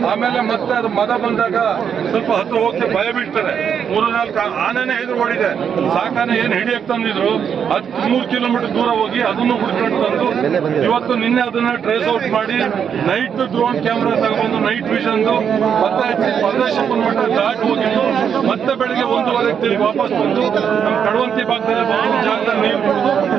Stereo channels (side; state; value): left; quieter; 7.7 dB